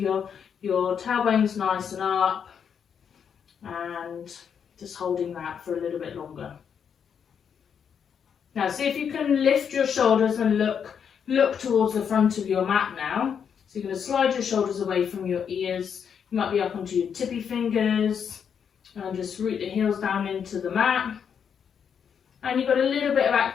your tailbone's nice and up, and just holding that for a little bit longer. Now see if you can lift your shoulders and look towards the front of your mat now. So you're going to slide your shoulders away from your ears. You might be up onto your tippy fingers, and just root the heels down into the mat. And you've got a little bit of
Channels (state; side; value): quieter; right; 7.4 dB